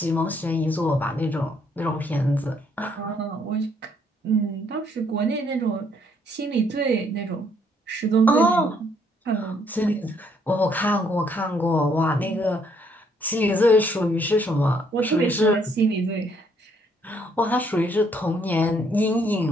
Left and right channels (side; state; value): both; normal; correlation 0.68